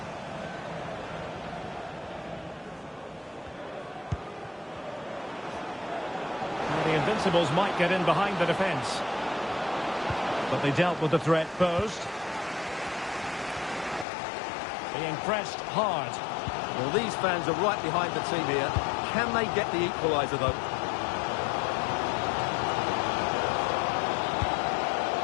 Now the Invincibles might get in behind the defence. But they dealt with the threat posed. Being pressed hard. Well, these fans are right behind the team here. Can they get the equaliser, though?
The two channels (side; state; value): right; drops out; at 14.1 s